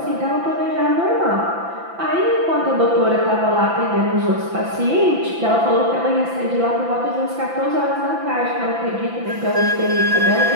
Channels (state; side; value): late; left; 5.9 ms